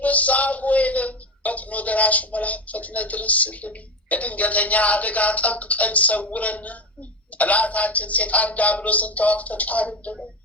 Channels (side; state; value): both; normal; correlation 0.19